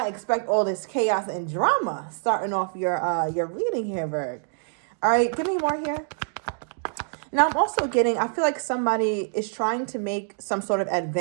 expect all this chaos and drama starting off your reading here, Virg. All right, give me more here. Now, I'm also getting, I feel like somebody is trying to make some sort of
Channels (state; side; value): silent; left; digital silence